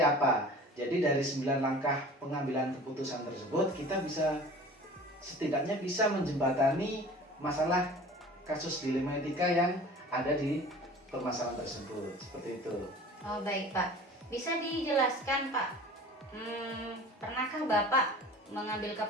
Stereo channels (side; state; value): both; normal; correlation 0.42